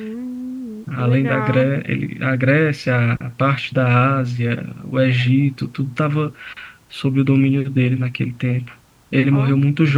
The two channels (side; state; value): both; identical; correlation 1.00